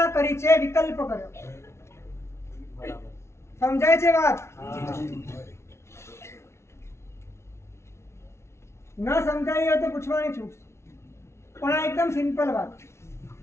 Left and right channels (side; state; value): right; late; 0.13 ms